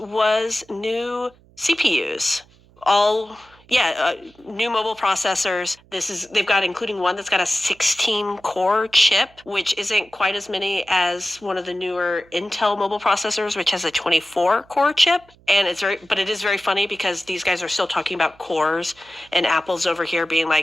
new CPUs. New mobile processors. They've got, including one that's got a 16-core chip, which isn't quite as many as one of the newer Intel mobile processors, which has a 24-core chip. And it is very funny because these guys are still talking about cores, and Apple's over here being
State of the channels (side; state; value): right; noise; hum, 29 dB below the sound